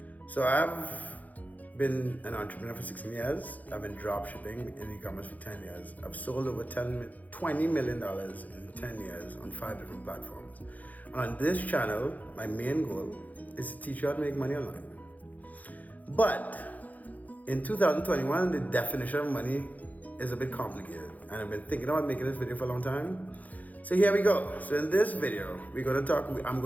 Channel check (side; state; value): right; late; 0.078 ms